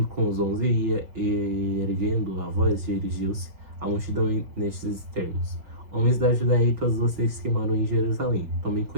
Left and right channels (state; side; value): late; left; 5.7 ms